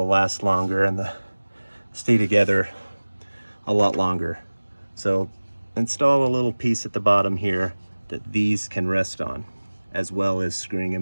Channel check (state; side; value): inverted; both; correlation -1.00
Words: last longer and stay together a lot longer. So install a little piece at the bottom here that these can rest on, as well as screwing